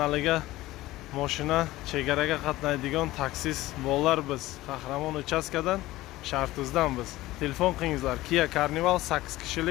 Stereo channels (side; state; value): right; quieter; 17.3 dB